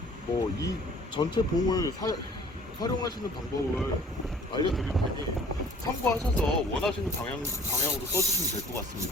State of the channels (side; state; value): both; normal; correlation 0.52